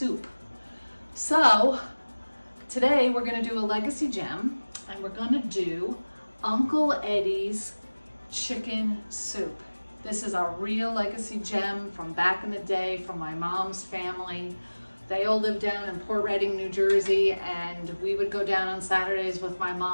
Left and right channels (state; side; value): inverted; both; correlation -1.00